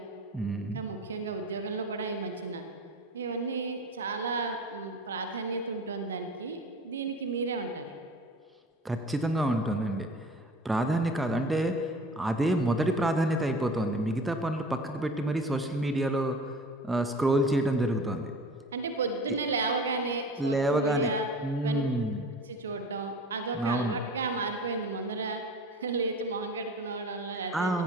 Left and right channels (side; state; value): both; normal; correlation 0.40